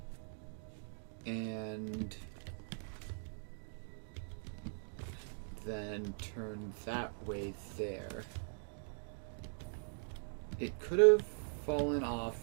And then turn that way there. It could have fallen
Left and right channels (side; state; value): left; silent; digital silence